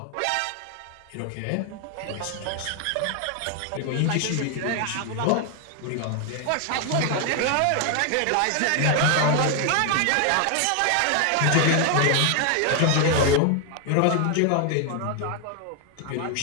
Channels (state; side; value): different; both; correlation 0.01